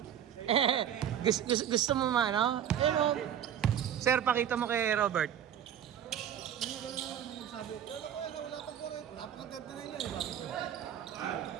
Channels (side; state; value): left; quieter; 9.7 dB